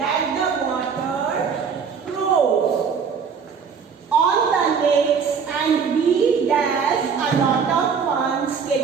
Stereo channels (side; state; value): left; quieter; 6.2 dB